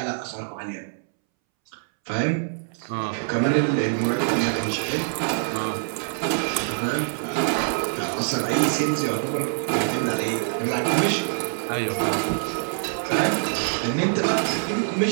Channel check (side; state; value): left; silent; 62 dB below the other